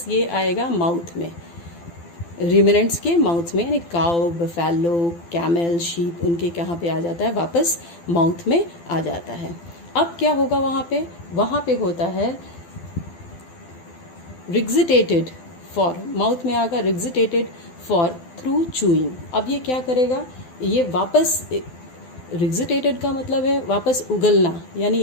ये आएगा माउथ में, र्यूमिनेंट्स के माउथ में, यानी काउ, बफेलो, कैमल, शीप, उनके कहाँ पे आ जाता है, वापस माउथ में आ जाता है। अब क्या होगा वहाँ पे होता है रिग्जिटेटेड फॉर, माउथ में आगा रिग्जिटेटेड फॉर थ्रू चूइंग। अब ये क्या करेगा, ये वापस, रिग्जिटेटेड का मतलब है वापस उगलना, यानी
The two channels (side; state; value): right; late; 12 ms